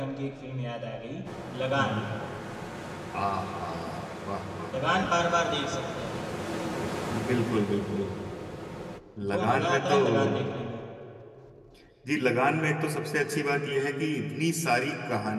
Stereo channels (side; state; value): both; identical; correlation 1.00